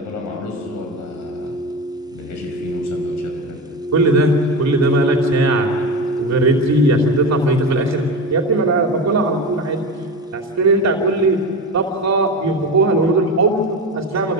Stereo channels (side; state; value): both; normal; correlation 0.24